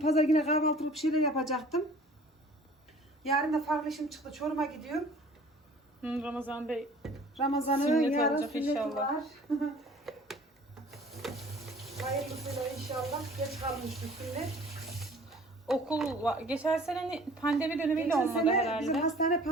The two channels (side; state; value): both; normal; correlation 0.49